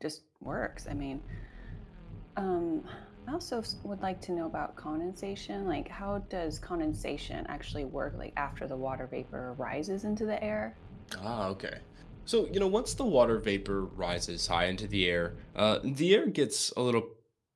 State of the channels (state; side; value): identical; both; correlation 1.00